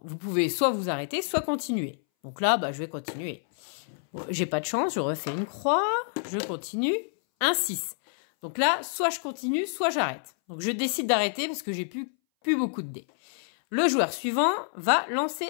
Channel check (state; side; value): silent; right; 59 dB below the other